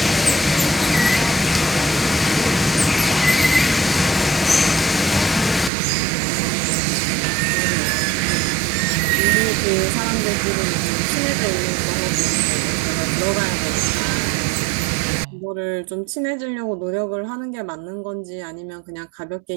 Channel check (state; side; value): drops out; left; at 5.7 s